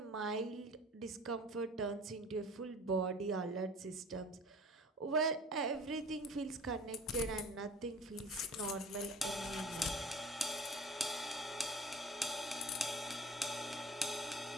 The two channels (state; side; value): normal; both; correlation 0.44